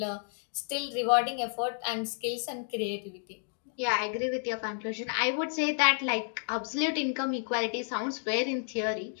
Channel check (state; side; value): silent; right; 57 dB below the other